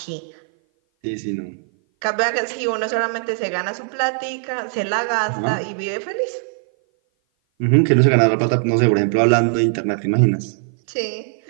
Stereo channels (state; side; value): silent; left; 57 dB below the other